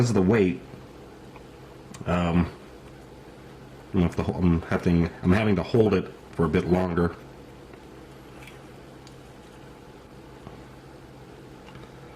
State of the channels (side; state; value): both; identical; correlation 1.00